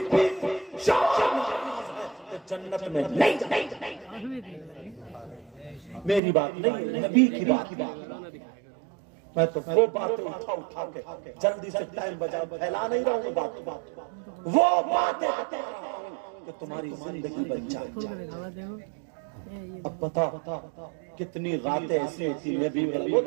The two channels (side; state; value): left; drops out; at 6.2 s